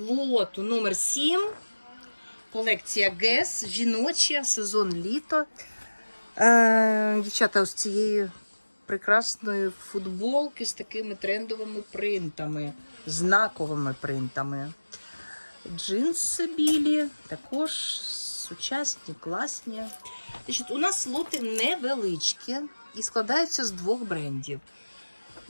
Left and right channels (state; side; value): inverted; both; correlation -1.00